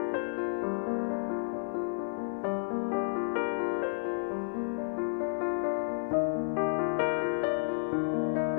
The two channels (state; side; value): silent; right; digital silence